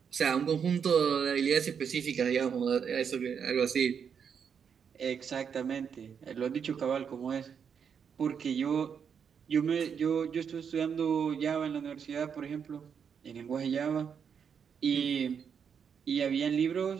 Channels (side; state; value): left; quieter; 7.1 dB